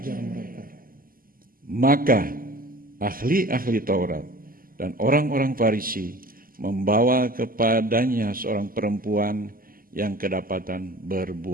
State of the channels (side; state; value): left; late; 0.42 ms